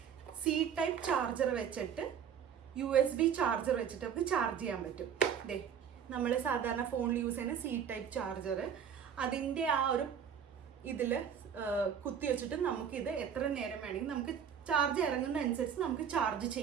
സി ടൈപ്പ് ചാർജർ വെച്ചിട്ട് USB ചാർജർ വെച്ചിട്ട് നമുക്ക് ചാർജ് ചെയ്യാൻ പറ്റും. ദേ, നമ്മൾ സാധാരണ ഫോണിൽ യൂസ് ചെയ്യുന്ന സി ടൈപ്പ് ചാർജർ, അതിൻ്റെ ആ ഒരു ഇതിൽ കുത്തി വെച്ചിട്ട് നമുക്കിത് എത്ര നേരം വേണമെങ്കിൽ നമുക്ക് ചാർജ് ഇറങ്ങുന്ന അനുസരിച്ച് നമുക്ക് ചാർജ്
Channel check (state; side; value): quieter; left; 8.0 dB